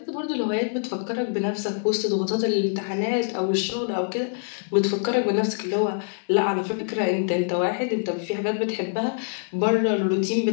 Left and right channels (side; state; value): right; silent; 62 dB below the other